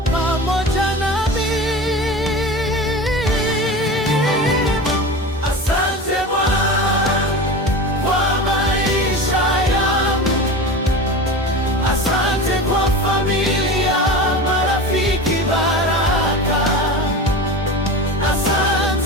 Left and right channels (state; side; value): normal; both; correlation 0.30